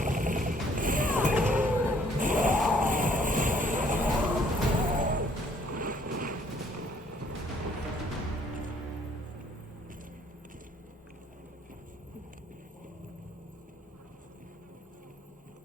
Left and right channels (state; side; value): normal; both; correlation 0.62